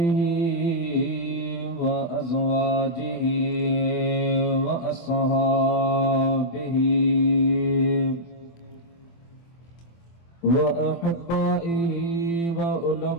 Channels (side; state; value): right; late; 24 ms